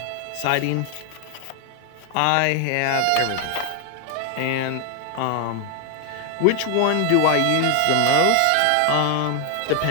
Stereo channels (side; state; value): both; different; correlation 0.00